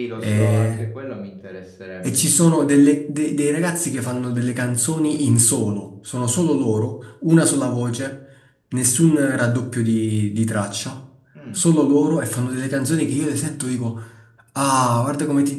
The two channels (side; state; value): both; identical; correlation 1.00